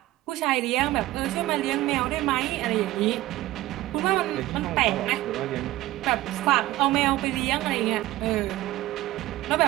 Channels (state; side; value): quieter; left; 16.5 dB